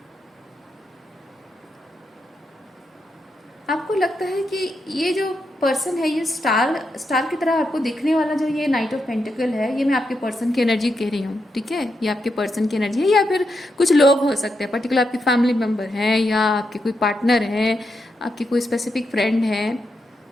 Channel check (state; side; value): normal; both; correlation 0.84